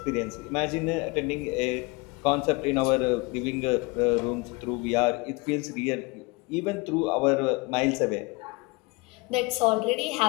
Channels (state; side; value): quieter; right; 26.4 dB